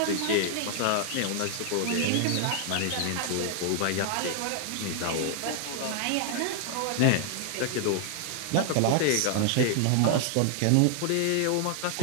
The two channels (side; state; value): both; different; correlation 0.00